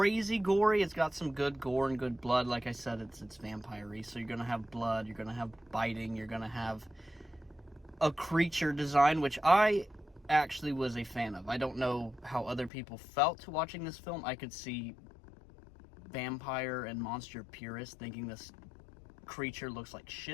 gory. It's got some good gore and good blood. Like I said, it's vampire-y, so you're gonna have blood, you're gonna have biting, you're gonna have a creature design, which I actually was a fan of. I don't know how other people felt watching this film. I could see vampire and monster purists thinking this creature looks like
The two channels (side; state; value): right; drops out; at 12.7 s